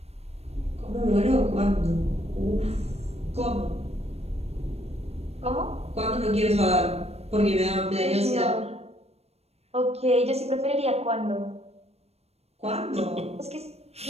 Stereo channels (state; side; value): late; left; 0.30 ms